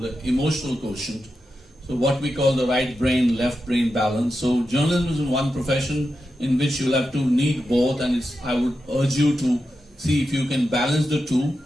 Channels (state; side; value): normal; both; correlation 0.89